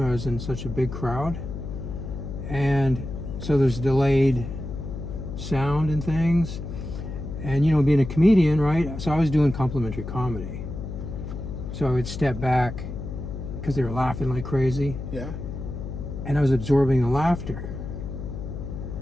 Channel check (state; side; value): noise; left; hum, 7 dB below the sound